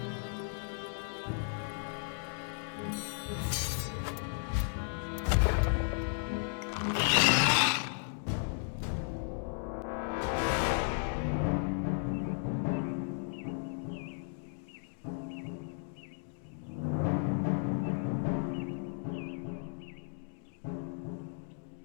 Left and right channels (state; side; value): silent; right; 55 dB below the other